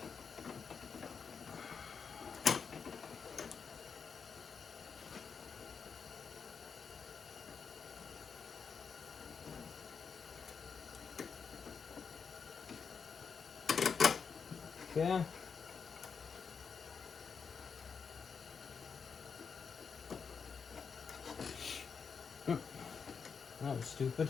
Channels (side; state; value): right; quieter; 6.0 dB